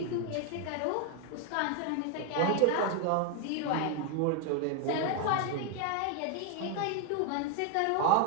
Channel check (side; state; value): both; different; correlation 0.01